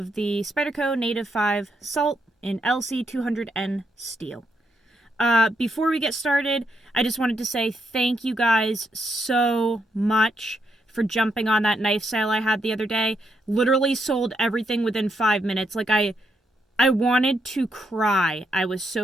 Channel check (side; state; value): both; normal; correlation 0.78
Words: the Spyderco Native 5 Salt in LC200N steel. Before we get started, I just wanted to say thank you guys so much for jumping on that knife sale I had the other day. Literally sold everything within 5 minutes. I wanted to cry. I was